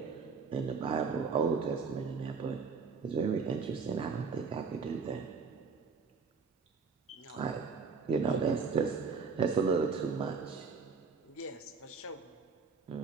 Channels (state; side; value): quieter; left; 5.1 dB